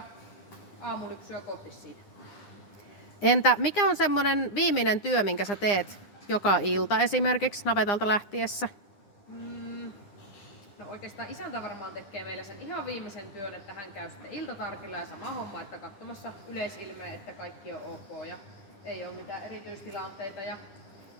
aamulypsyä kohti siitä. Entä mikä on semmoinen viimeinen työ, minkä sä teet joka ilta esimerkiksi navetalta lähtiessä? No oikeastaan isäntä varmaan tekee meillä sen ihan viimeisen työn, että hän käy sitten iltatarkilla ja sama homma, että katsomassa yleisilmeä, että kaikki on ok ja ei ole mitään erityistilanteita ja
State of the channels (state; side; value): late; right; 9.9 ms